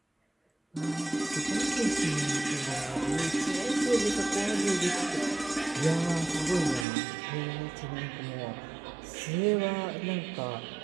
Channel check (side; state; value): left; drops out; at 6.9 s